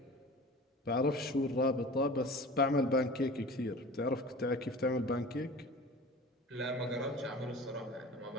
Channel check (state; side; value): normal; both; correlation 0.39